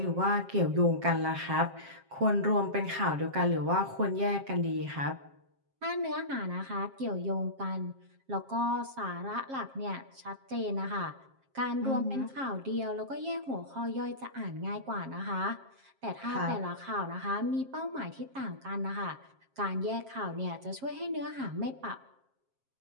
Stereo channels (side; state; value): left; late; 7.5 ms